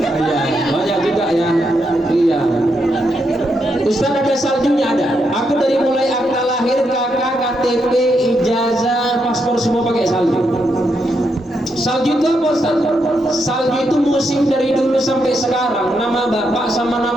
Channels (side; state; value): both; normal; correlation 0.81